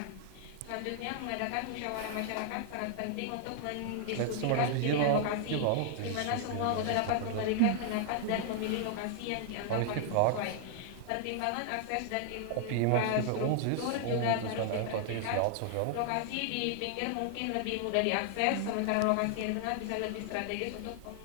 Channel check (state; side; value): different; both; correlation 0.00